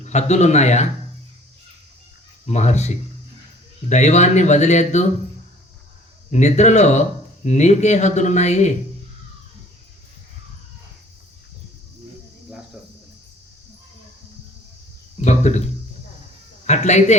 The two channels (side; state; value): both; normal; correlation 0.52